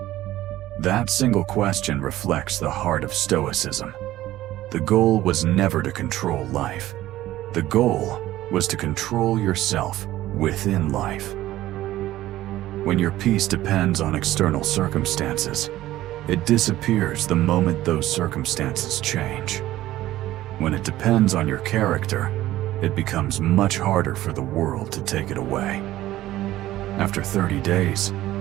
That single question reflects the heart of Stoicism. The goal was never to control life. The goal was to control yourself within life. When your peace depends on external circumstances, it disappears the moment those circumstances change. When it depends on your character, it becomes much harder for the world to take it away. After 30 days,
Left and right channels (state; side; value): quieter; left; 15.0 dB